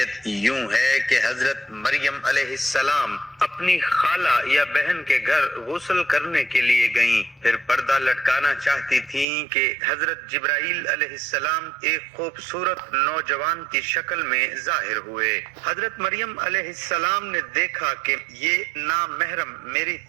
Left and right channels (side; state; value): left; drops out; at 9.2 s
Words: یوں ہے کہ حضرت مریم علیہ السلام اپنی خالہ یا بہن کے گھر غسل کرنے کے لیے گئیں، پھر پردہ لٹکانا چاہتی تھیں کہ حضرت جبرائیل علیہ السلام ایک خوبصورت نوجوان کی شکل میں ظاہر ہوئے۔ حضرت مریم علیہ السلام نے دیکھا کہ یہ نامحرم میری